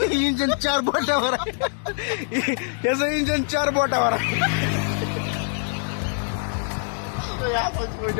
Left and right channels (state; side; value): silent; right; digital silence